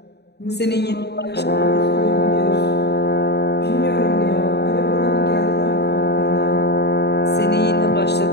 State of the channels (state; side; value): late; right; 0.48 ms